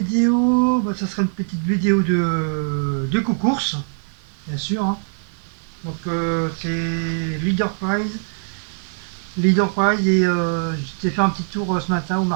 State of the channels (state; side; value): silent; left; 56 dB below the other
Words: bah, ça sera une petite vidéo de course, bien sûr, hein. Donc c'est Leader Prize. Leader Prize et j'ai fait un petit tour ce matin au